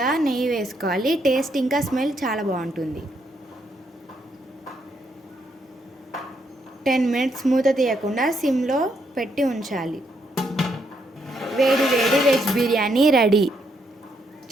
నెయ్యి వేసుకోవాలి. టేస్ట్ ఇంకా స్మెల్ చాలా బాగుంటుంది. 10 మినిట్స్ మూత తీయకుండా సిమ్లో పెట్టి ఉంచాలి. వేడి వేడి వెజ్ బిర్యానీ రెడీ.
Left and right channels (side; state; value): both; normal; correlation 0.76